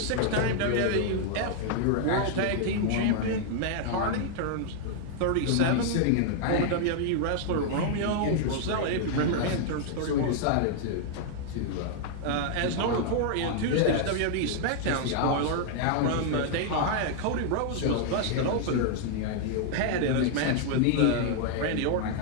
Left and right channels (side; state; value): both; different; correlation 0.00